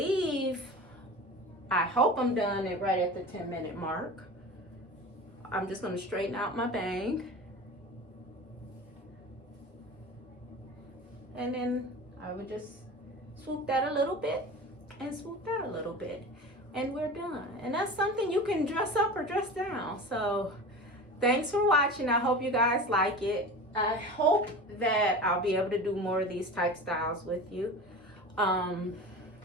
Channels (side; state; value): both; normal; correlation 0.33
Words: I hope I'm done it right at the 10-minute mark. I'm just going to straighten out my bang. And then I would just swoop that a little bit and swoop that a little bit. And we're done. And that's something you can dress up or dress down. So thanks for watching. I hope you guys like it. I hope that I'll be able to do more of these type styles with you.